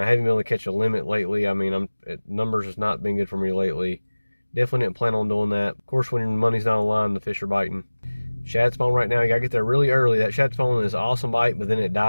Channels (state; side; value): inverted; both; correlation -1.00